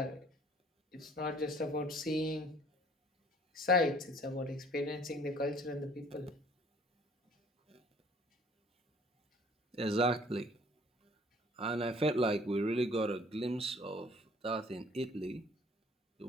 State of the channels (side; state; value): both; normal; correlation 0.55